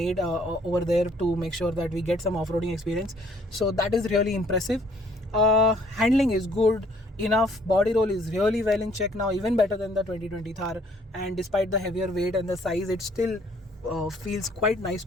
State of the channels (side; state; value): both; normal; correlation 0.61